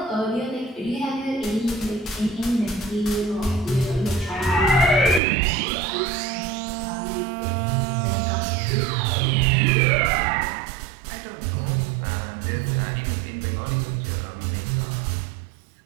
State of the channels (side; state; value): left; drops out; at 5.2 s